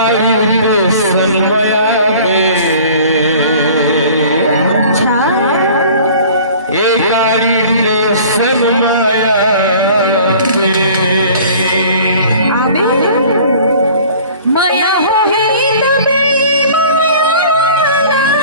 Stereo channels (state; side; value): inverted; both; correlation -0.47